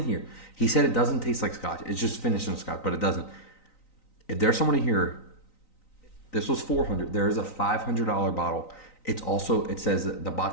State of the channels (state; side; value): late; right; 3.9 ms